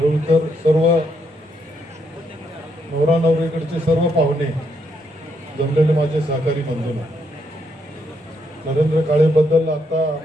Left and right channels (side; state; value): both; normal; correlation 0.76